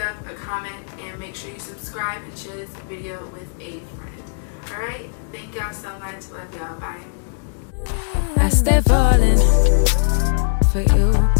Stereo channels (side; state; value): right; silent; digital silence